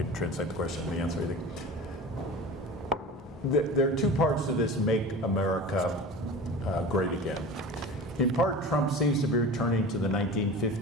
translate the question and the answer, I think. There are two parts to this Make America Great Again. In part, Trump seems to be returning to the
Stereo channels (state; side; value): normal; both; correlation 0.35